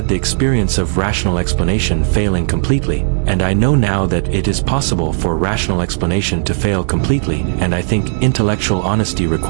the experience of rational explanation failing completely, and I know now that it is possible for rational explanation to fail completely, and I think intellectual honesty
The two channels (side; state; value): left; silent; digital silence